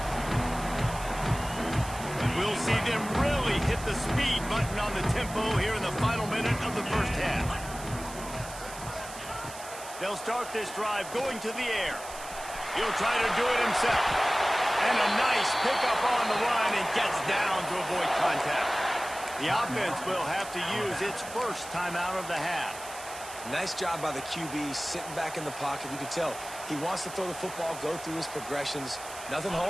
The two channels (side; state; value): right; noise; hiss, 13 dB below the sound